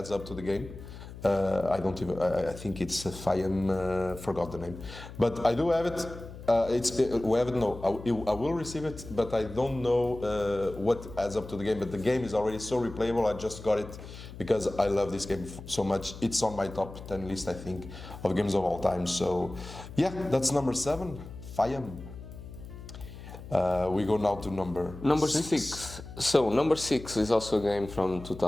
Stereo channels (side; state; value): left; noise; hum, 14 dB below the sound